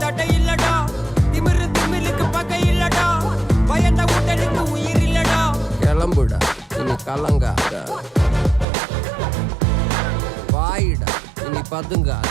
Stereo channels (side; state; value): left; drops out; at 8.7 s